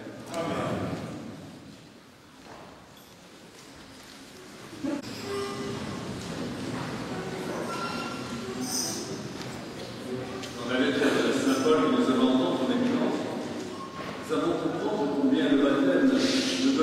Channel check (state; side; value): identical; both; correlation 1.00